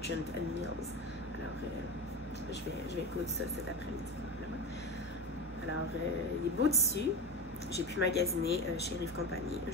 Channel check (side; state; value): both; normal; correlation 0.22